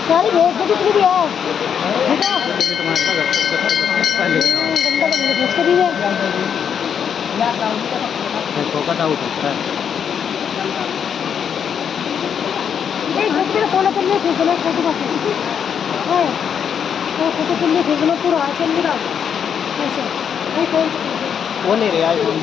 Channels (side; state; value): right; quieter; 7.8 dB